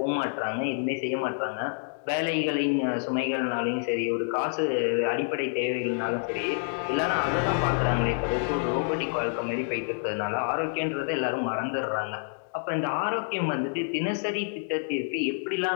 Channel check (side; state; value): right; silent; 59 dB below the other